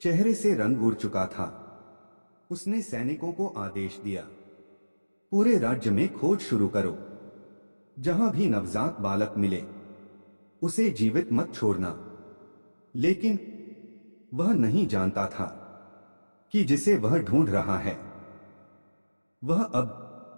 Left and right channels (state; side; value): inverted; both; correlation -1.00